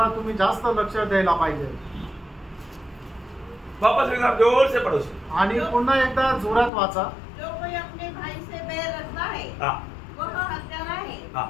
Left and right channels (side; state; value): right; drops out; at 6.7 s